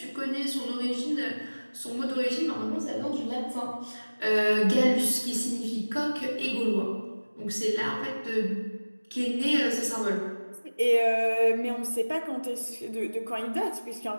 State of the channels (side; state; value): both; inverted; correlation -1.00